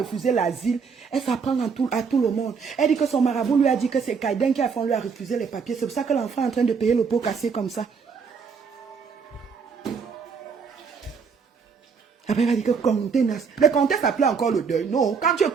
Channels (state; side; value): quieter; left; 5.7 dB